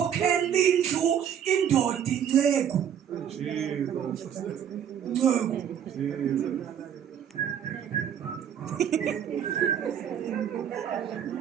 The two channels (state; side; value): quieter; left; 8.9 dB